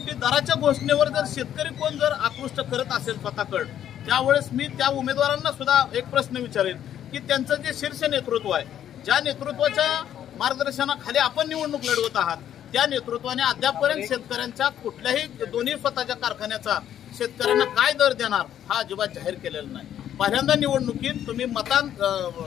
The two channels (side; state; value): right; quieter; 10.5 dB